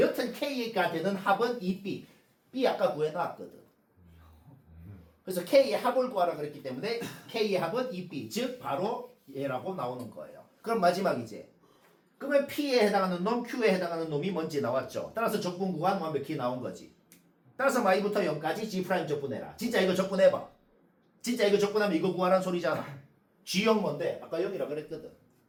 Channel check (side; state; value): both; identical; correlation 1.00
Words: k가 되는 합은 2b. b 아까 구해놨거든. 그래서 k의 합을 구하라 그랬기 때문에 k의 합은 2b. 즉 바로 얘라고 나오는 거예요. 그럼 마지막이지. 그러면 p에 해당하는 놈, q에 해당하는 놈이 뭔지 나왔죠. 따라서 적분 구간 완벽히 나온 거지. 따라서 y부터 0까지 g' 적분해라. 진짜 이거 적분해봐. 진짜 이거 적분하면 이거 구하라는 소리잖아. g0 뭔데? 아까 0이라 그랬거든.